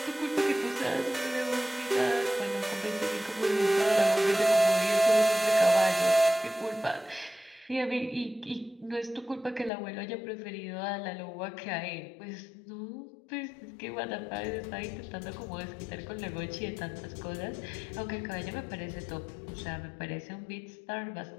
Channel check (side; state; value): right; drops out; at 9.7 s